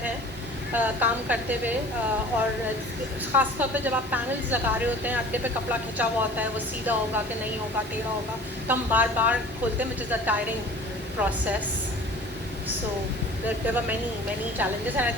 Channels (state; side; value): normal; both; correlation 0.44